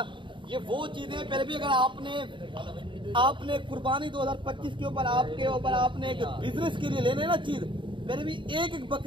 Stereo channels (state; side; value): late; left; 0.24 ms